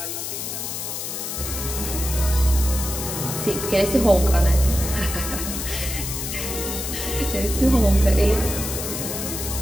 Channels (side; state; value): left; noise; hiss, 5 dB below the sound